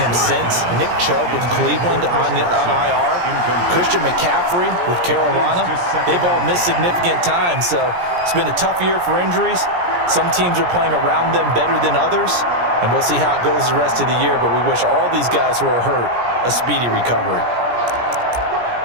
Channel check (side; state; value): left; late; 17 ms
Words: since. Nick Chubb with Cleveland on IR. Christian McCaffrey with Carolina. They've all missed significant time, so it's been a tough year for injuries. Some teams are playing around them better than others, and we'll see how it goes the rest of the year, but we wish all these guys who are hurt a speedy recovery.